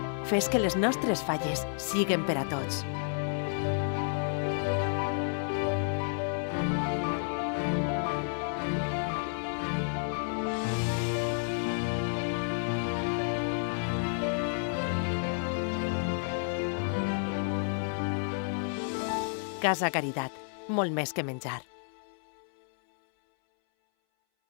Fes que les nostres falles siguen per a tots. Casa Caritat, molt més que menjar.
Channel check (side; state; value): right; silent; 57 dB below the other